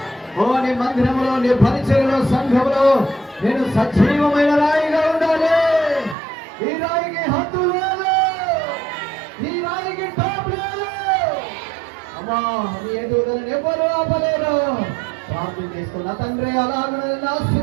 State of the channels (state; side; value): drops out; left; at 6.2 s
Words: ఓ నీ మందిరంలో, నీ పరిచర్యలో, సంఘంలో నేను సజీవమైన రాయిగా ఉండాలి. ఈ రాయికి హద్దు లేదు, ఈ రాయికి టాప్ లేదు. అమ్మా నీ ఎదుగుదలను ఎవరు ఆపలేరు. ప్రార్థన చేసుకున్న తండ్రి అలాగ